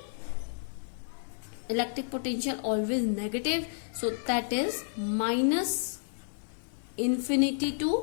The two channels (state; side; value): silent; right; digital silence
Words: electric potential always negative, so that is minus infinity two